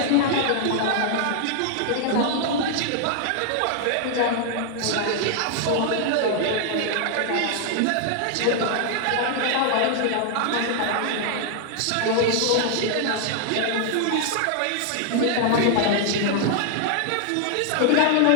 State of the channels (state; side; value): different; both; correlation 0.00